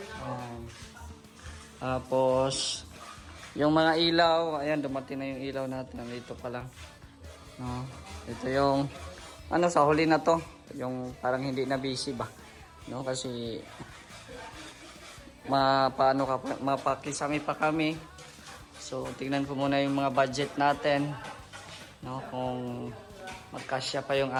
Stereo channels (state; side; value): identical; both; correlation 1.00